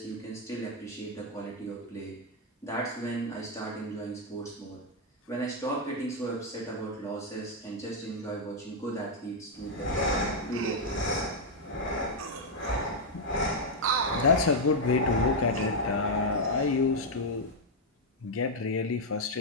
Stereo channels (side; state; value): both; normal; correlation -0.01